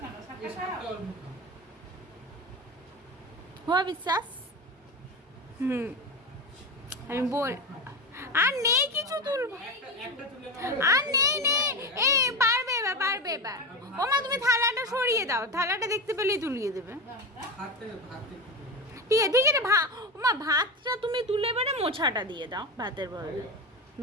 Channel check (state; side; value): normal; both; correlation 0.19